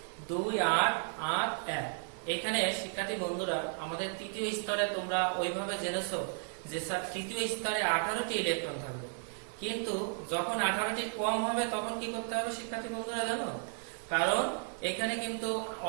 2 8 8 1। এখানে শিক্ষার্থী বন্ধুরা আমাদের তৃতীয় স্তরে তোমরা ওইভাবে জেনেছো যে তৃতীয় স্তরে 18টি ইলেকট্রন থাকবে, কিন্তু যখন 18টির কম হবে তখন কি করতে হবে শিক্ষার্থী বন্ধুরা জানো? কারণ এখানে কিন্তু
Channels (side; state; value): left; silent; 55 dB below the other